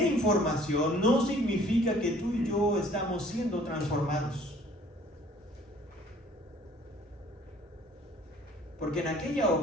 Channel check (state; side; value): normal; both; correlation 0.55